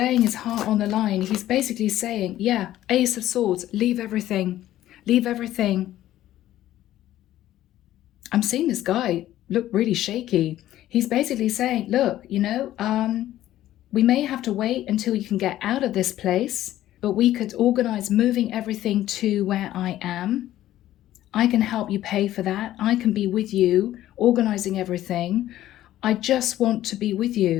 his heart on the line. He's basically saying, yeah, Ace of Swords, leave everything. Leave everything. I'm seeing this guy look really shaky. He's basically saying, look, you know, we may have to wait until you can get out of this place, but we could organize moving everything to where I am. I can help you pay for that. I can be with you, organizing everything. I just want to be with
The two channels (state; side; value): quieter; right; 13.6 dB